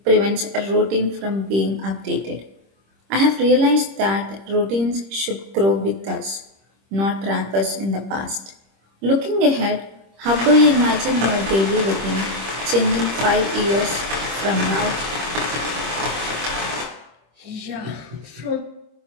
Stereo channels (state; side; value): late; left; 26 ms